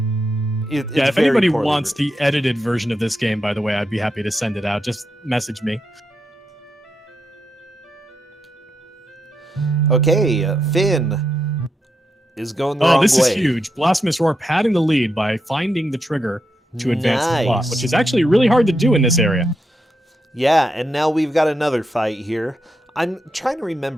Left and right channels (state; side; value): normal; both; correlation 0.84